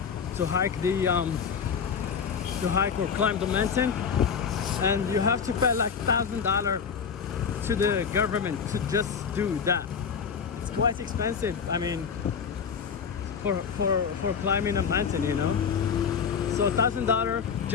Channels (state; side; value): quieter; right; 6.5 dB